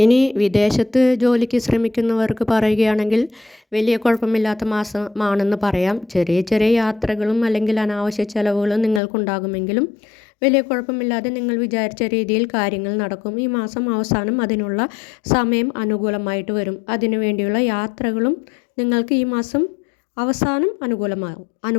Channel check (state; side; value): drops out; right; at 9.0 s